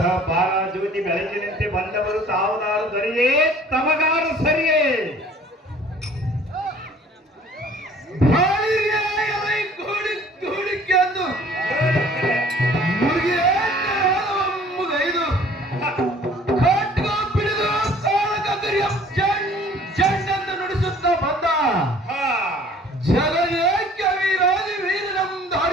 ಬಾಲಾಜ್ಯೋತಿ ಬೆಳಕಿನಂತೆ ಬಂದವರು ತಾವುದಾರು ದರಿಯೇ, ತಮಗಾರು ಸರಿಯೇ.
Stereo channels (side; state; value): both; normal; correlation 0.52